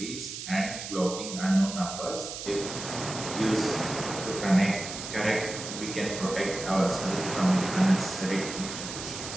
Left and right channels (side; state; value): right; noise; hiss, 8 dB below the sound